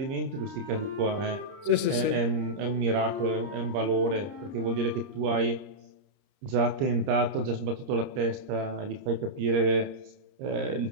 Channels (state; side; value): late; left; 29 ms